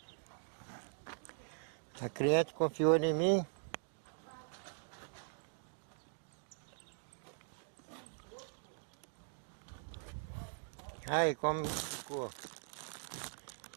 A cliente confiou em mim. Aí, como ficou.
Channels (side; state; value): left; silent; digital silence